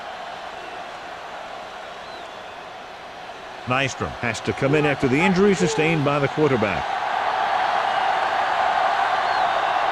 Nystrom has to come in after the injury sustained by the quarterback.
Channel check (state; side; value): identical; both; correlation 1.00